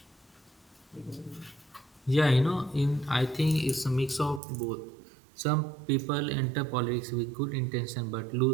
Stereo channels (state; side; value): drops out; left; at 4.4 s